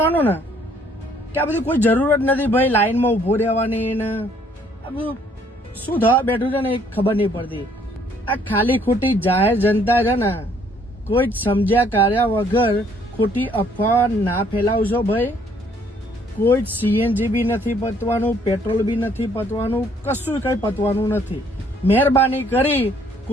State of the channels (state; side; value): normal; both; correlation 0.63